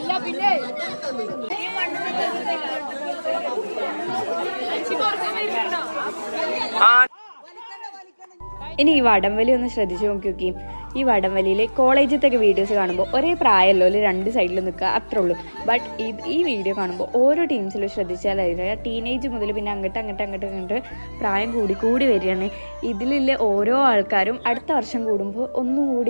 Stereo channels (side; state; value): both; inverted; correlation -1.00